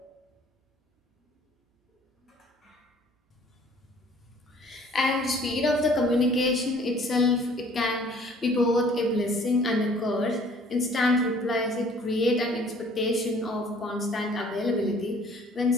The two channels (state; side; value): normal; both; correlation 0.55